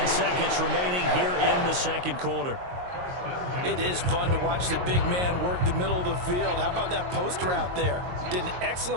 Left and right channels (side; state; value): left; late; 22 ms